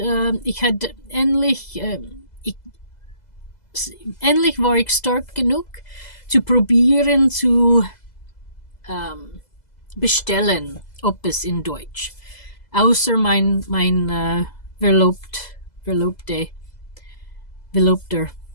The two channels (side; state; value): right; late; 2.0 ms